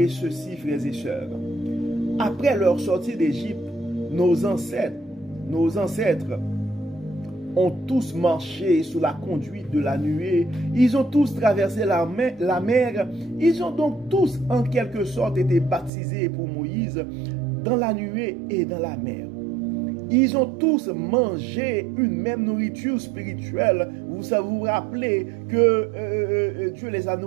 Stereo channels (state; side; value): drops out; left; at 15.9 s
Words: ceci, frères et sœurs. Après leur sortie d'Égypte, nos ancêtres ont tous marché sous la conduite de la nuée. Ils ont tous traversé la mer. Ils ont donc tous, en quelque sorte, été baptisés pour Moïse dans la nuée et dans la mer. Ils ont tous mangé une même nourriture spirituelle. Vous vous rappelez que Dieu les a